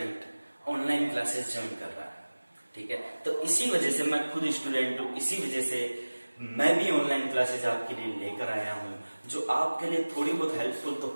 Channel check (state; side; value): inverted; both; correlation -1.00